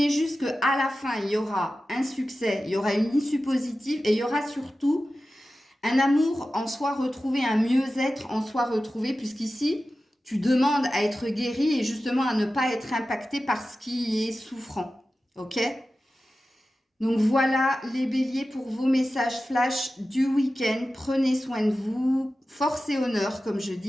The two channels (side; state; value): both; normal; correlation 0.94